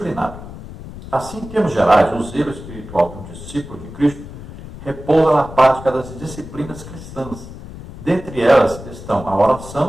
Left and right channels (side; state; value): left; noise; rumble, 13 dB below the sound